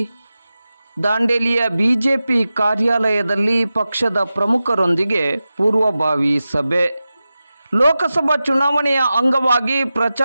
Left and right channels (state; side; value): inverted; both; correlation -0.94